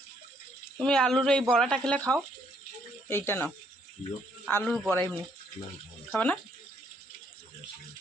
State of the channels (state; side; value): normal; both; correlation 0.69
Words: তুমি আলুর এই বড়াটা খেলে খাও, এইটা নাও আলুর বড়া, এমনি খাবে না?